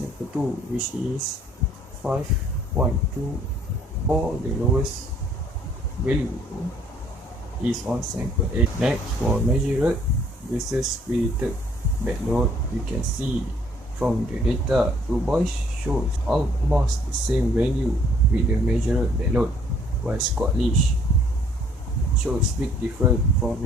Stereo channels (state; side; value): normal; both; correlation 0.61